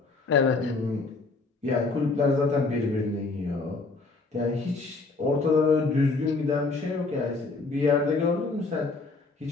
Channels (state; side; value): quieter; right; 3.8 dB